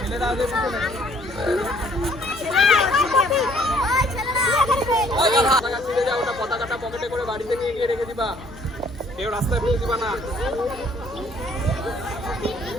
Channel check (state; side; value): normal; both; correlation 0.60